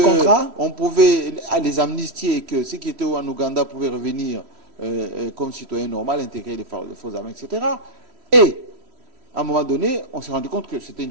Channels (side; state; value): left; late; 3.1 ms